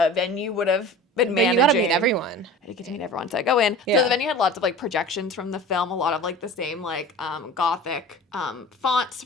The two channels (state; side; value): normal; both; correlation 0.38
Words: venue would have been managing. You gotta meet everyone. I did get to meet everyone, so I go in. Yeah. So the venue had lots of, like, projections from the film, a lot of, like, the same, like, gothic fonts